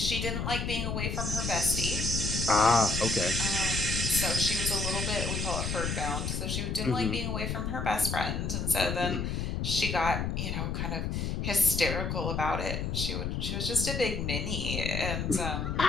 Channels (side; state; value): left; noise; rumble, 2 dB below the sound